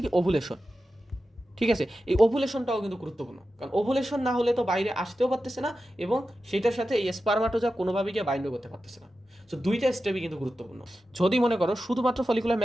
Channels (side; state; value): both; normal; correlation 0.92